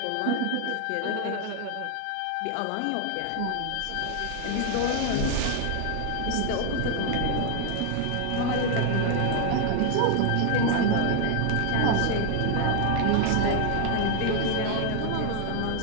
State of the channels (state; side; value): different; both; correlation 0.00